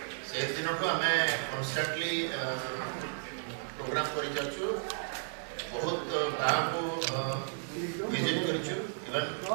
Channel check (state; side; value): silent; left; digital silence